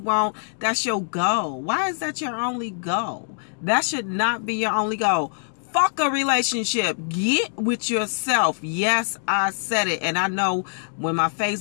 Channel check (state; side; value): silent; right; digital silence